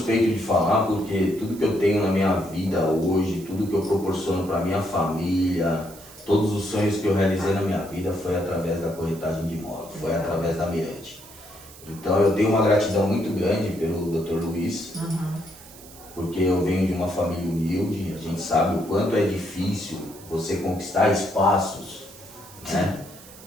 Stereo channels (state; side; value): noise; right; hiss, 19 dB below the sound